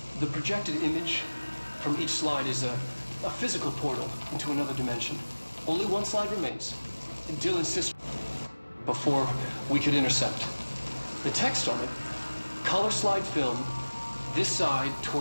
The projected image from each slide is a physical portal into another dimension. Only one slide remains. Dill insists before we could intercept. The text on it, color slide film, this side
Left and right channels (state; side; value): inverted; both; correlation -1.00